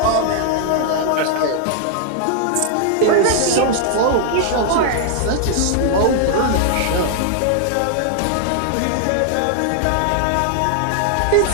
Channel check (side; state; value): both; different; correlation 0.00